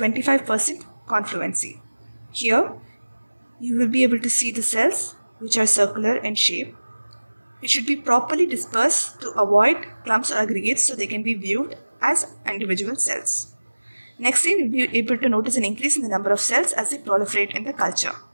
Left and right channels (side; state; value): both; inverted; correlation -1.00